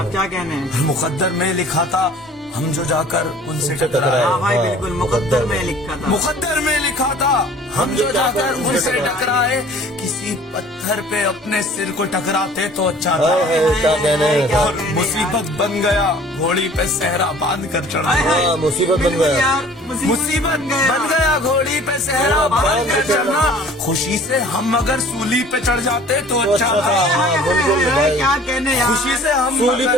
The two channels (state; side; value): normal; both; correlation 0.49